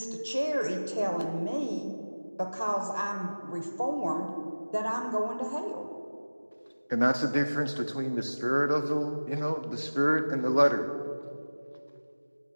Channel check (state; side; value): inverted; both; correlation -1.00